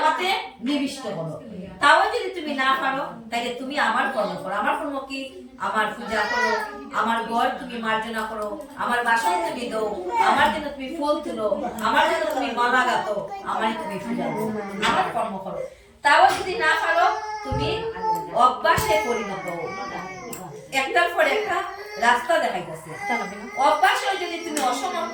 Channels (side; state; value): both; identical; correlation 1.00